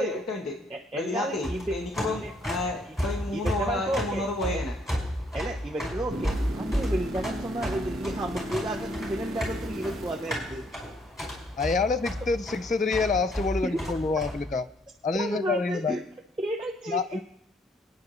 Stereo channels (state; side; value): normal; both; correlation 0.68